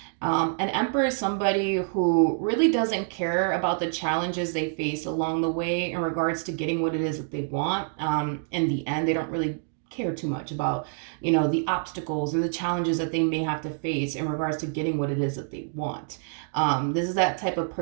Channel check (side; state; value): left; silent; digital silence